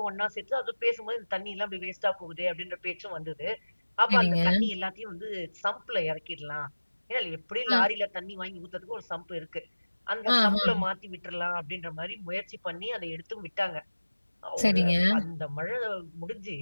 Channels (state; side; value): inverted; both; correlation -1.00